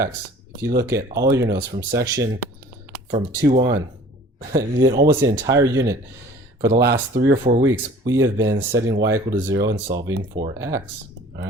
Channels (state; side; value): normal; both; correlation 0.48